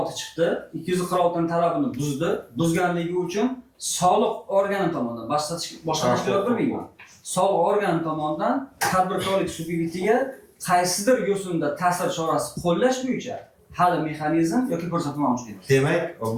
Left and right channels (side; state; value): both; identical; correlation 1.00